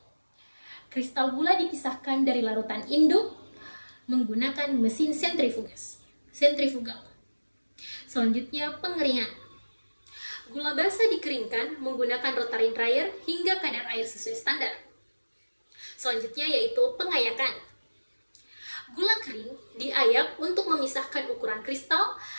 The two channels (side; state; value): both; inverted; correlation -1.00